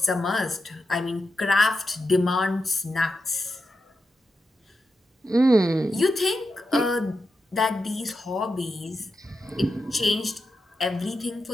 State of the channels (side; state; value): both; normal; correlation 0.88